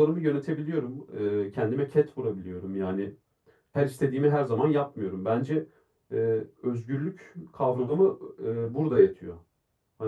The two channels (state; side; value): identical; both; correlation 1.00